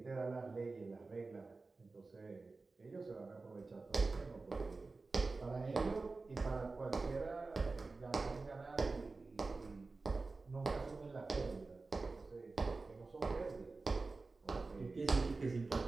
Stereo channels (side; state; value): left; quieter; 3.8 dB